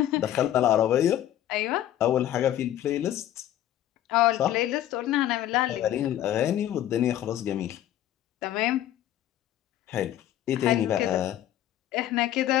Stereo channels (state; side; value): quieter; right; 12.3 dB